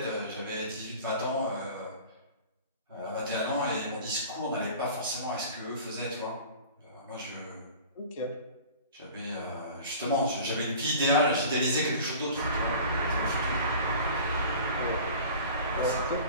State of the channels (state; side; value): inverted; both; correlation -0.41